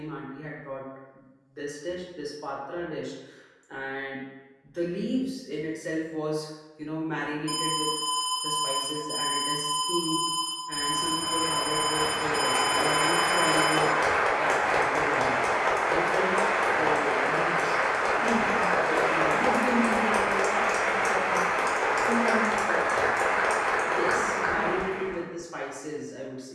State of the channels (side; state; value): both; identical; correlation 1.00